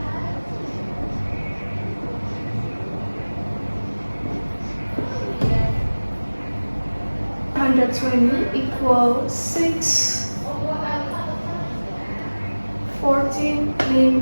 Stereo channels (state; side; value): inverted; both; correlation -1.00